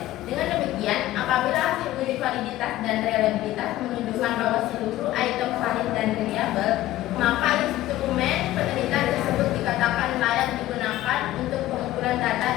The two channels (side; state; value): right; quieter; 15.0 dB